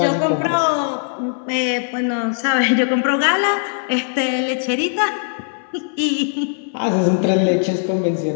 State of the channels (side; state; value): right; silent; digital silence